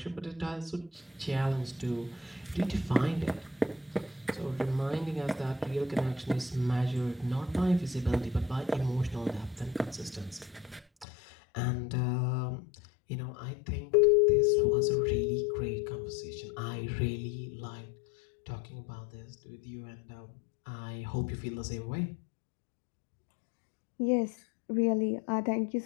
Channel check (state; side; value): drops out; right; at 11.1 s